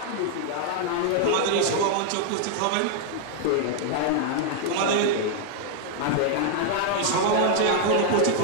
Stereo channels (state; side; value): different; both; correlation 0.00